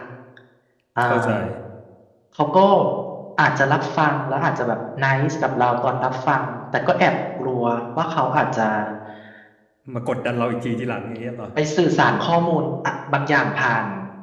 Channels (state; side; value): identical; both; correlation 1.00